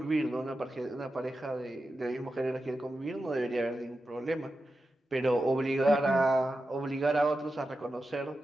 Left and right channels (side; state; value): both; normal; correlation 0.91